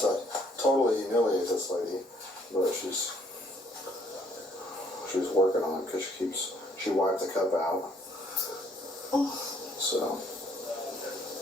totally humiliate this lady, but she's working on it because she wiped the cup out. So.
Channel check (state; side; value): normal; both; correlation 0.65